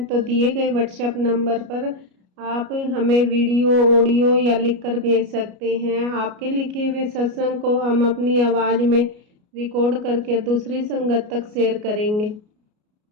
तो दिए गए व्हाट्सएप नंबर पर आप हमें वीडियो, ऑडियो या लिखकर भेज सकते हैं। आपके लिखे हुए सत्संग को हम अपनी आवाज़ में रिकॉर्ड करके दूसरी संगत तक शेयर करेंगे।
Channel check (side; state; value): left; late; 33 ms